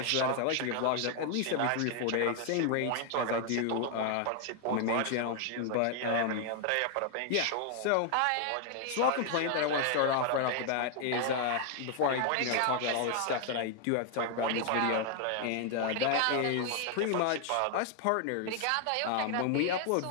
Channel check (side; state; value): both; different; correlation 0.00